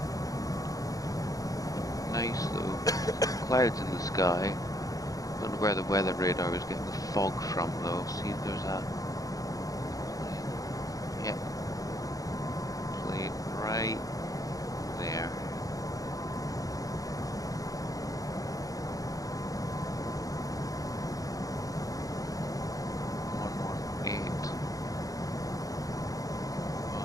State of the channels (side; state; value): right; late; 0.17 ms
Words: Nice though. Clouds in the sky. Don't know where the weather radar is getting the fog from though. See if there's a plane right there.